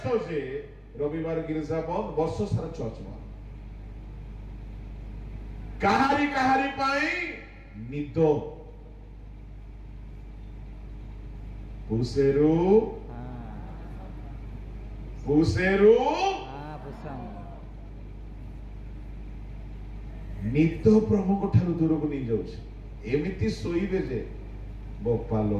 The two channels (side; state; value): both; identical; correlation 1.00